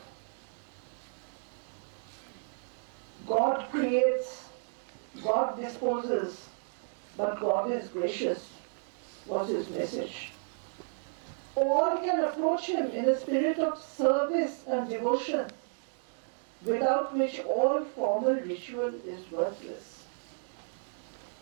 God creates, God disposes, but God is gracious, was his message. All can approach him in a spirit of service and devotion, without which all formal ritual is worthless.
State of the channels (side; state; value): left; silent; digital silence